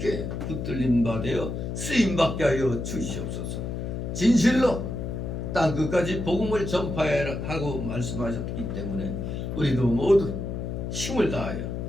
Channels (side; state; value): left; noise; hum, 4 dB below the sound